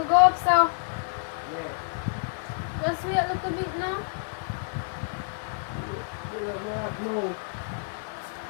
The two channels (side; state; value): right; silent; 59 dB below the other